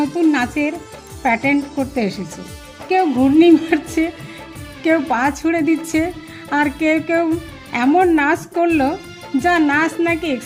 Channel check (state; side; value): identical; both; correlation 1.00